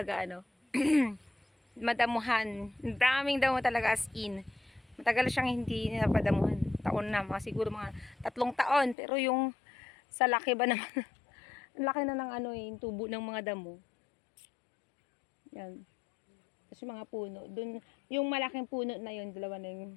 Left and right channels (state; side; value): drops out; right; at 9.0 s